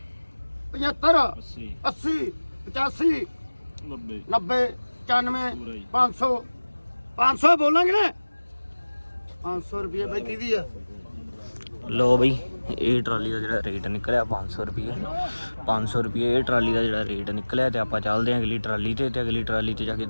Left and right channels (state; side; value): inverted; both; correlation -1.00